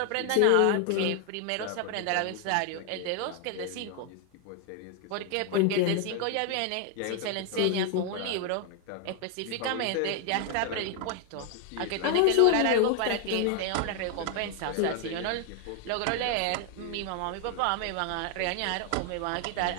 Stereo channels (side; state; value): both; different; correlation 0.00